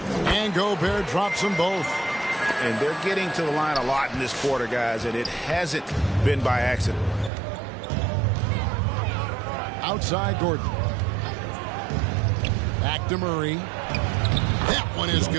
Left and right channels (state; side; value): drops out; left; at 7.3 s